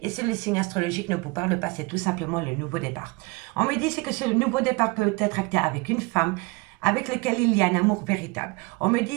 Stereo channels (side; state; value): left; quieter; 26.8 dB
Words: Et si le signe astrologique ne vous parle pas, c'est tout simplement le nouveau départ. On me dit que ce nouveau départ peut être acté avec une femme avec laquelle il y a un amour véritable. On me